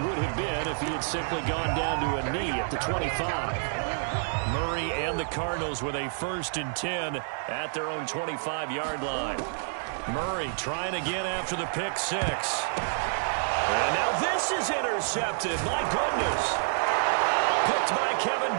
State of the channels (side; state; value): left; silent; digital silence